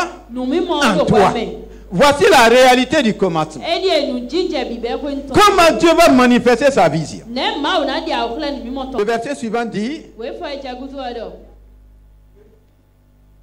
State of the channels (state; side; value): identical; both; correlation 1.00